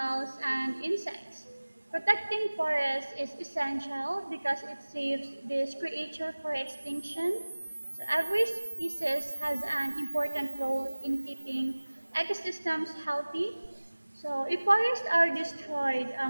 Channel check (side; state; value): both; inverted; correlation -1.00